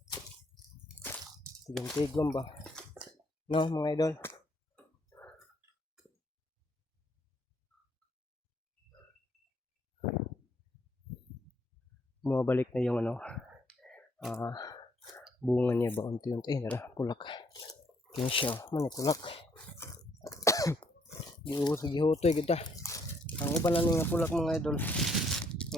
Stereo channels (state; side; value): normal; both; correlation 0.68